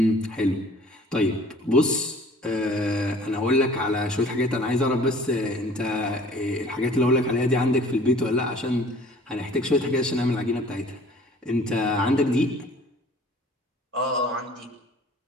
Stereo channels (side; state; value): both; normal; correlation 0.50